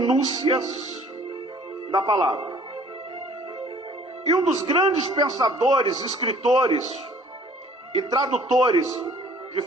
da palavra. E um dos grandes pensadores, escritores e tradutores de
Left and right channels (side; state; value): both; normal; correlation 0.54